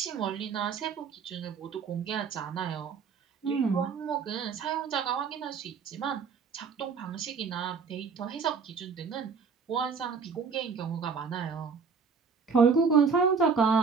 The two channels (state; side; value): quieter; left; 5.6 dB